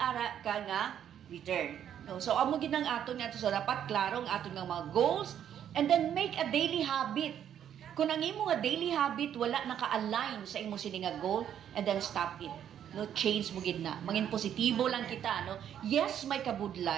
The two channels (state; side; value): quieter; left; 9.7 dB